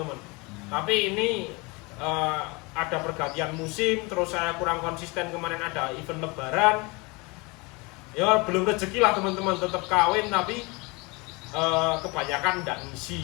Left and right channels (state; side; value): quieter; right; 26.9 dB